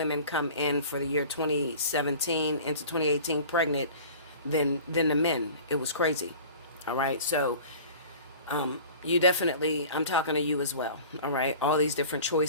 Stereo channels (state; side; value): inverted; both; correlation -0.42